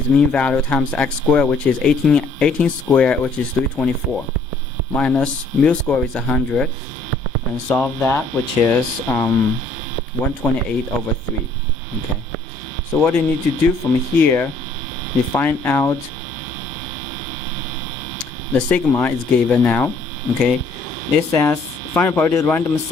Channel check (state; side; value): quieter; right; 3.2 dB